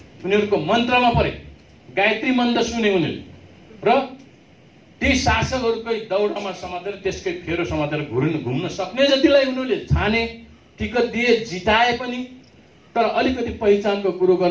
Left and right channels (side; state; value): both; identical; correlation 1.00